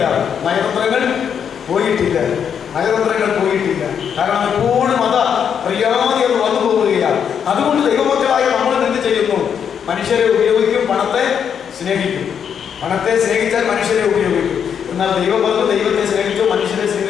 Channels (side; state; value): right; quieter; 7.8 dB